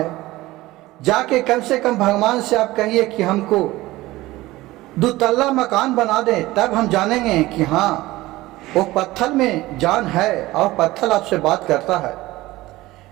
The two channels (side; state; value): left; quieter; 18.3 dB